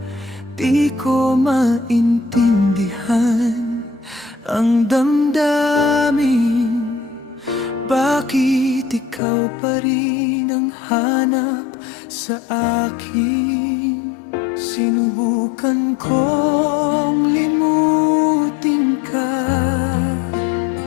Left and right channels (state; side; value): drops out; right; at 9.2 s